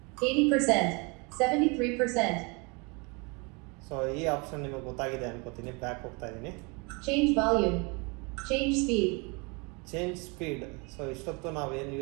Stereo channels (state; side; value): quieter; left; 30.3 dB